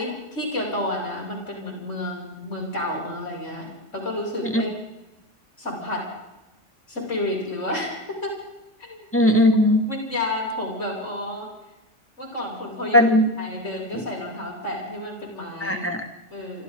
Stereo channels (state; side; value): normal; both; correlation 0.16